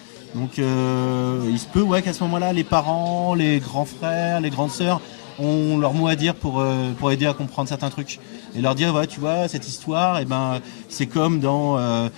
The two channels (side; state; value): right; silent; digital silence